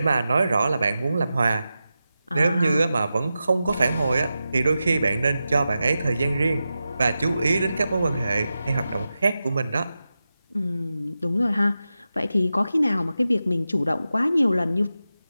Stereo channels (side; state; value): both; inverted; correlation -0.92